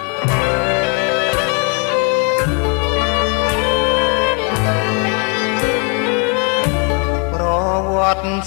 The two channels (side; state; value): right; quieter; 36.9 dB